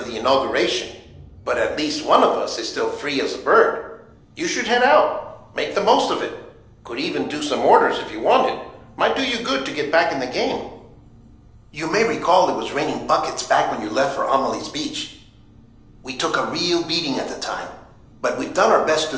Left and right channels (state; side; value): identical; both; correlation 1.00